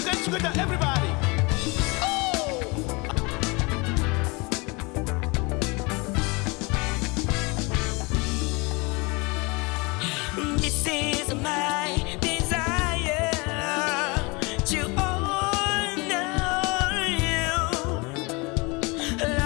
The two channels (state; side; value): quieter; right; 27.5 dB